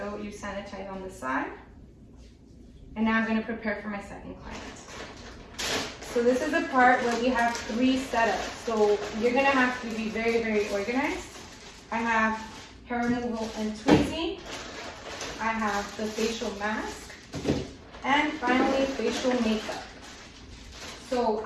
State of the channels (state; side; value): identical; both; correlation 1.00